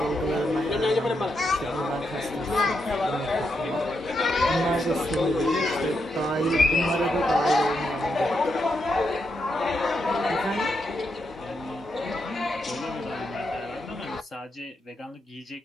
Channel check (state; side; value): normal; both; correlation 0.82